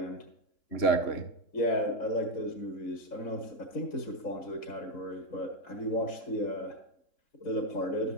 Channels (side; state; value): right; late; 3.7 ms